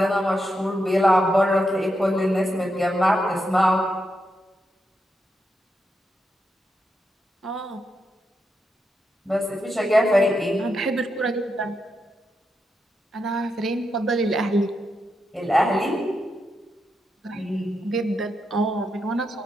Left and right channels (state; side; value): normal; both; correlation 0.84